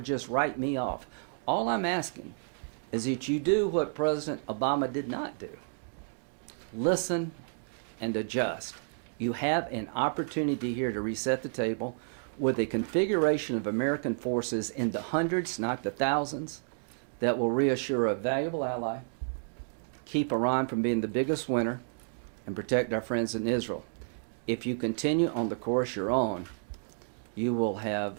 write me off. All I'm asking is that you do what President Obama did not do. Listen and adjust. You have an opportunity here to reset the table with a configuration of American forces in the hundreds, not the thousands, that will reassure a valuable ally, keep Iran from being the biggest winner, and protect our friends in Israel. If you continue on the course you're on, you will have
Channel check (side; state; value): left; silent; digital silence